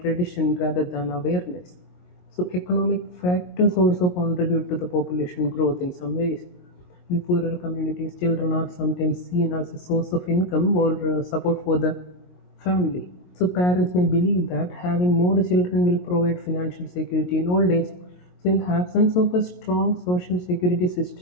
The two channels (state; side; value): late; right; 22 ms